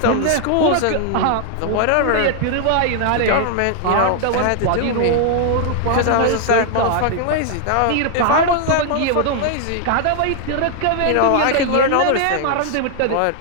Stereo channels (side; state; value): both; different; correlation 0.00